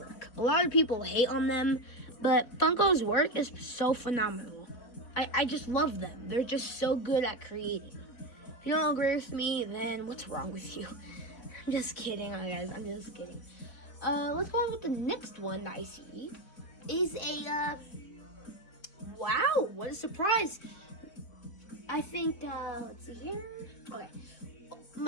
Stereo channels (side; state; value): right; late; 3.8 ms